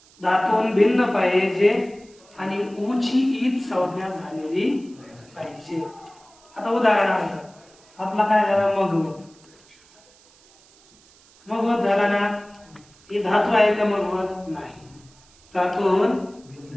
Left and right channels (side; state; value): right; noise; hiss, 28 dB below the sound